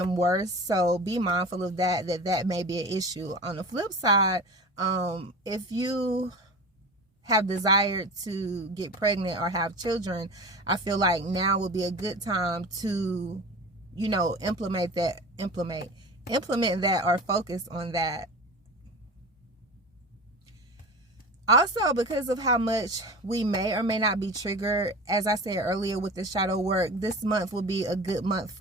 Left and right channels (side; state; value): both; normal; correlation 0.33